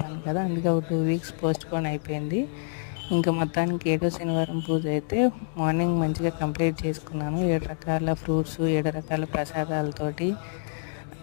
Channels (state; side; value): silent; right; digital silence